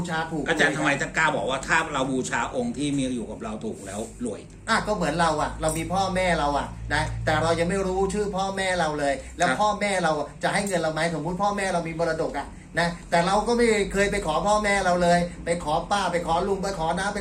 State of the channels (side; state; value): both; identical; correlation 1.00